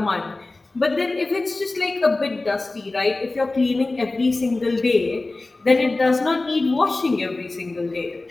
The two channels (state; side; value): quieter; right; 3.2 dB